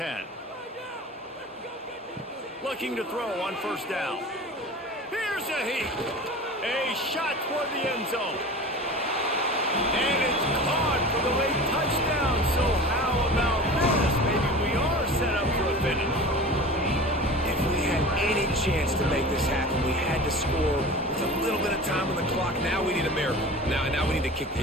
Looking to throw on first down. Here's a heat. A shot toward the end zone. And it's caught for the late touchdown. So how about this? Maybe we are set up for a finish. If we had any chance to make this happen, we had to score with a little bit of time on the clock. Now we need a miracle. Now we need to kick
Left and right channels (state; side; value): normal; both; correlation 0.36